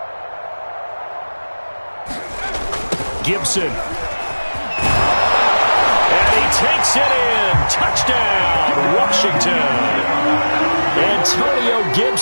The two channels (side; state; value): both; inverted; correlation -1.00